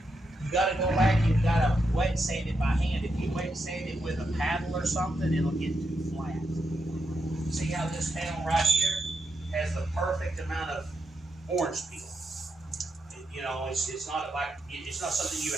go back and you gotta wet sand it by hand. If you wet sand it with a paddle or something, it'll get too flat. See how this panel right here has the perfect amount of orange peel. It's not like it's not something you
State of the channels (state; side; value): normal; both; correlation 0.83